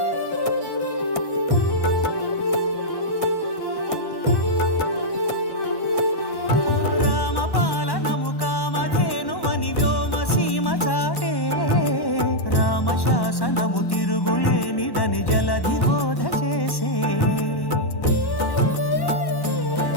రామపాలనము కామధేను అని వ్యోమ సీమ చాటే రామశాసనము తిరుగులేనిదని జలధి బోధ చేసే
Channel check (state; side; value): late; right; 1.1 ms